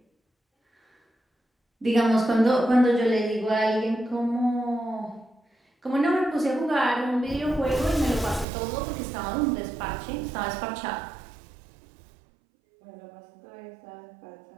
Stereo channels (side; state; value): left; drops out; at 8.5 s